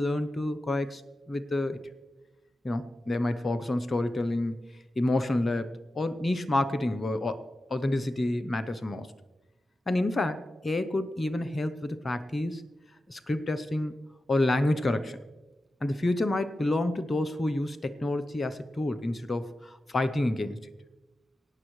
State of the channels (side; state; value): both; normal; correlation 0.92